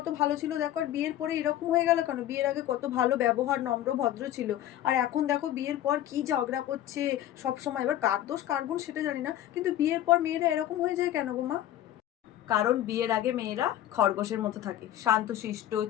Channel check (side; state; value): right; quieter; 12.6 dB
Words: ভালো ছিল দেখো, আর বিয়ের পরে এরকম হয়ে গেল কেন? বিয়ের আগে কত ভালো ব্যবহার, নম্র ভদ্র ছিল, আর এখন দেখো বিয়ের পর কি ঝগড়া করছে সব সময়। এবার কার দোষ কার গুণ সেটা জানি না, কিন্তু বিয়ের পর মেয়েরা এরকম হয়ে যায় কেন গো মা? কারণ বিয়ের আগে মেয়েরা খরগোশের মতো থাকে, শান্তশিষ্ট,